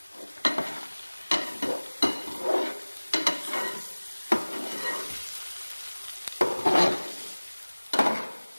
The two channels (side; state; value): both; inverted; correlation -1.00